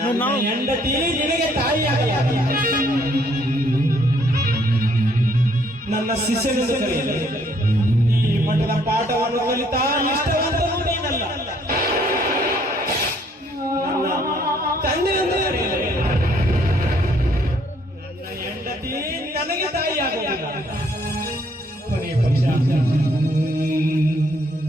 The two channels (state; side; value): normal; both; correlation 0.66